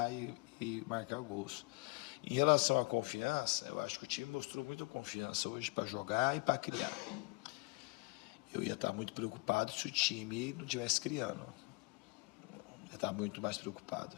e marcar gols. Em relação à confiança, eu acho que o time mostrou muita confiança hoje para jogar e para criar. Eu ia estar muito preocupado se o time não estivesse criando. Eu ia estar muito mais preocupado.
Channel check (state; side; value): quieter; right; 29.0 dB